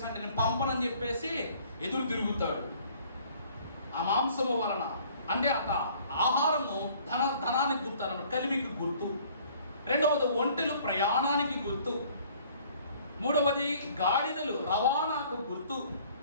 అంటే, నేను పంపనని చెప్పేసి ఎదురు తిరుగుతాడు. ఆ మాంసము వలన అంటే ఆహారము ధనానికి గుర్తు అన్నమాట, కలిమికి గుర్తు. రెండవది ఒంటెలు ప్రయాణానికి గుర్తు. మూడవది గాడిదలు రవాణాకు గుర్తు.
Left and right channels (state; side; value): inverted; both; correlation -0.56